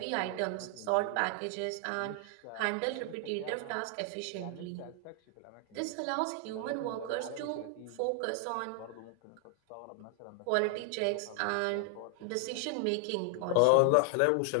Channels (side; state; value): both; different; correlation 0.00